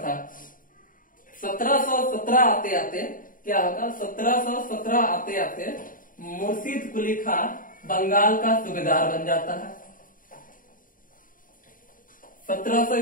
था। 1717 आते आते क्या होगा? 1717 आते आते मुर्शिद कुली खां बंगाल का सूबेदार बन जाता है। 1700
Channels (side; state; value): right; late; 0.40 ms